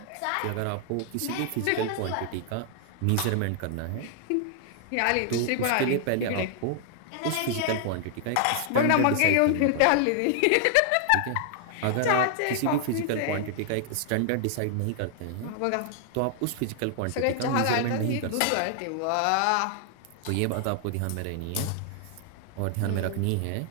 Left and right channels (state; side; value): different; both; correlation 0.00